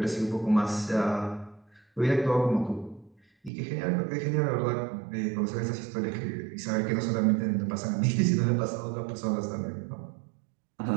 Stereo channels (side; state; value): left; drops out; at 3.5 s